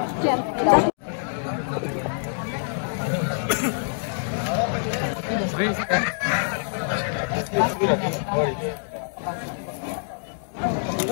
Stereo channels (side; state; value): right; silent; digital silence